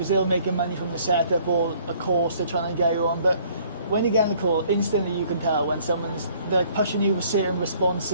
they'll make money from the setup or a course they're trying to get you on, but when you get on the call, instantly you can tell when they're pushing you with certain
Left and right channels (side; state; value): both; inverted; correlation -0.59